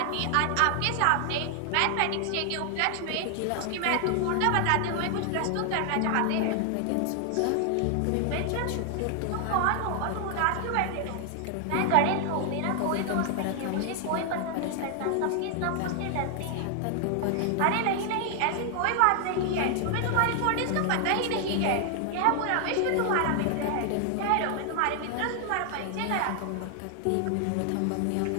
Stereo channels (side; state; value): both; different; correlation 0.00